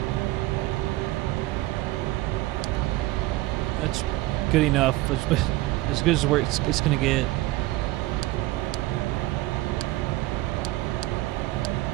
That's good enough. As good as it's going to get.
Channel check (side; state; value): left; quieter; 18.2 dB